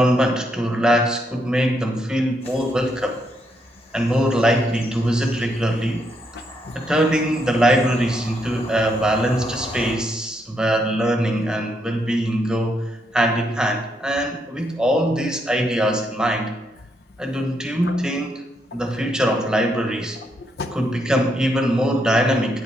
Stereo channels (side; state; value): both; normal; correlation 0.77